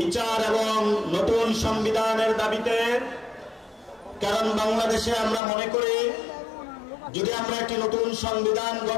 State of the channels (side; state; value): right; drops out; at 5.4 s